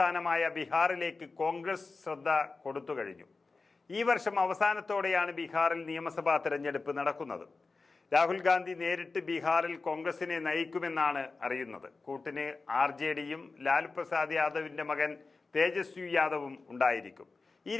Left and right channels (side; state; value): right; quieter; 3.9 dB